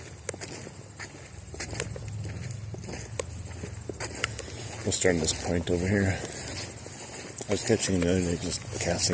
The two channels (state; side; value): identical; both; correlation 1.00